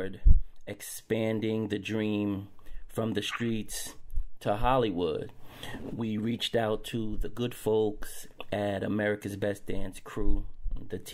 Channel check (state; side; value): identical; both; correlation 1.00